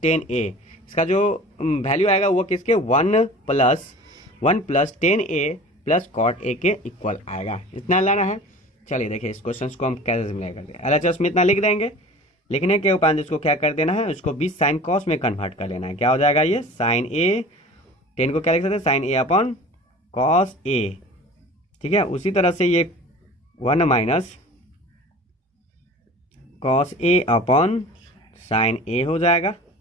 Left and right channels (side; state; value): both; normal; correlation 0.41